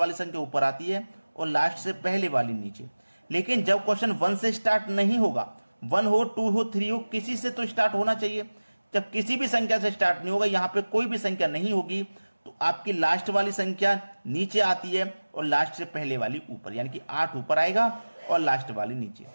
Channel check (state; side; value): inverted; both; correlation -1.00